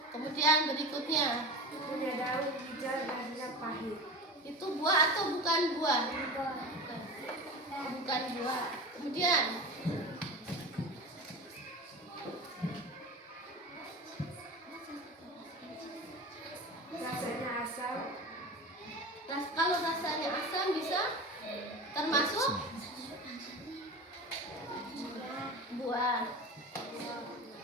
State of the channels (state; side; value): normal; both; correlation 0.30